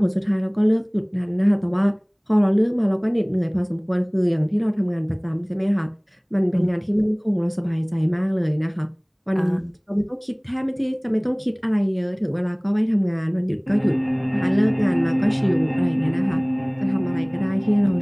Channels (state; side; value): identical; both; correlation 1.00